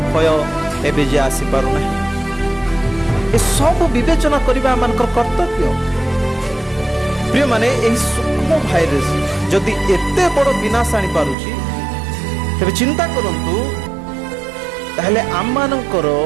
भय एबे जे आसी पारु नाही। ए सब विवेचना करिबा मानकर कर्तव्य। प्रिय माने, एही सूक्ष्म भाइरस जदि एते बड़ विनाश आनी पारुछि, तेबे चिंता करंतु ताहले आम मानकर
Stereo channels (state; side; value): drops out; left; at 11.4 s